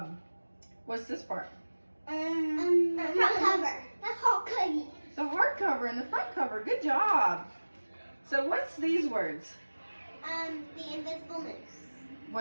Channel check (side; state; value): both; inverted; correlation -1.00